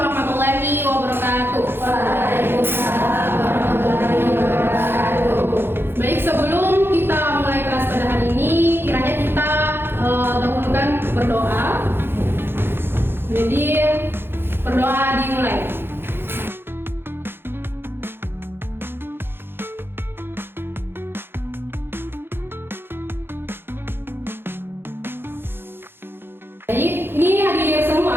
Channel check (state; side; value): late; left; 0.10 ms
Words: wabarakatuh. Waalaikumsalam warahmatullahi wabarakatuh. Baik, sebelum kita mulai kelas pada hari ini, kiranya kita dahulukan berdoa. Jadi, berdoa dimulai. Baik, ini hadir